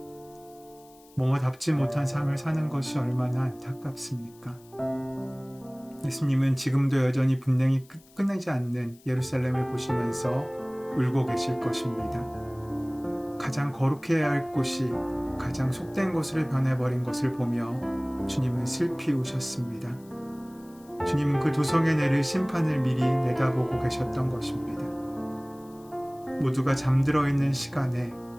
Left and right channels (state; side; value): noise; left; hiss, 27 dB below the sound